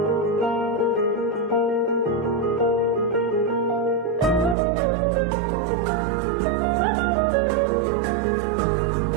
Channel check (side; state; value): left; drops out; at 4.5 s